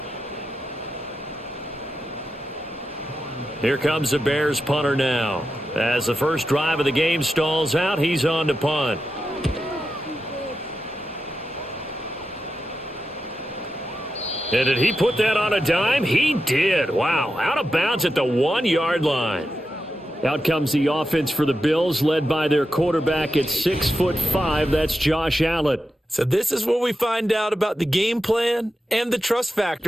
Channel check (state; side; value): normal; both; correlation 0.89